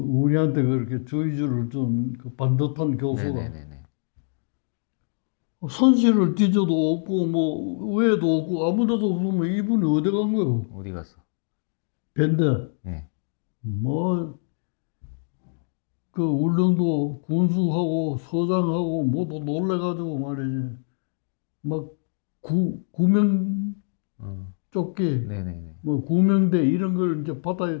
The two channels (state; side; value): silent; right; digital silence